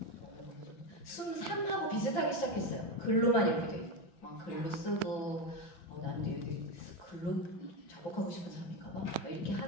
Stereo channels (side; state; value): right; late; 5.9 ms